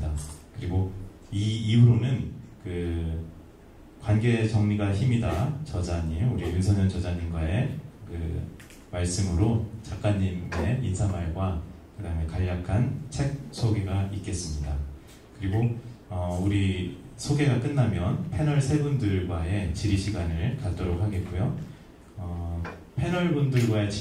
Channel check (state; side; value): identical; both; correlation 1.00